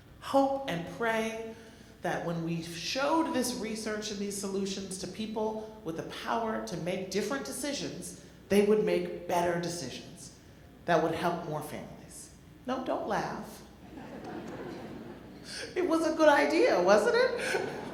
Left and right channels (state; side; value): identical; both; correlation 1.00